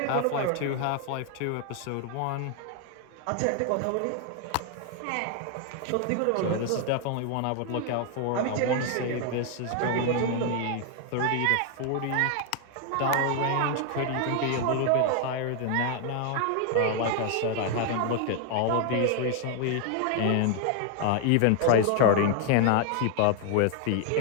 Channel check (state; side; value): different; both; correlation 0.00